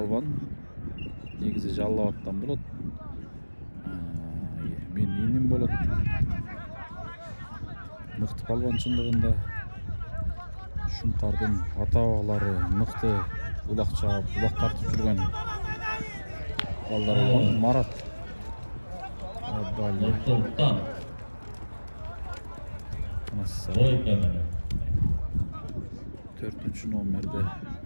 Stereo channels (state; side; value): inverted; both; correlation -1.00